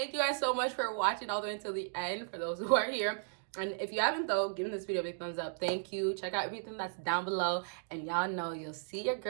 you guys so much for watching all the way until the end, for those who are here. And if you haven't, though, give this video a big thumbs up. Thank you. Check out everything that's down below. And y'all know you'll see your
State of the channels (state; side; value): silent; left; digital silence